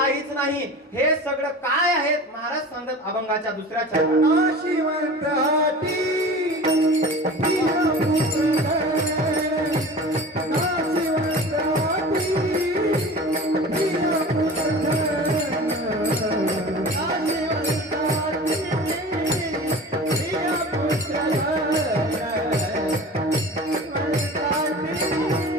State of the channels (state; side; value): normal; both; correlation 0.37